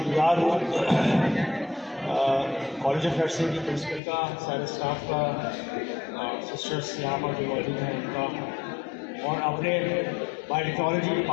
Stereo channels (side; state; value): right; drops out; at 4.0 s